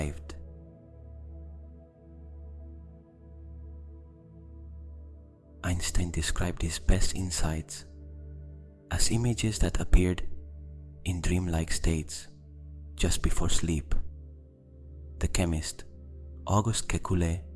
Einstein described his best insights as images that appeared in dreamlike states just before sleep. The chemist Auguste Kekulé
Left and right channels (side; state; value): both; identical; correlation 1.00